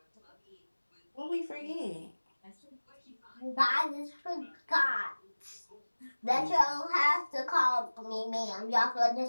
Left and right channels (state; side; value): inverted; both; correlation -1.00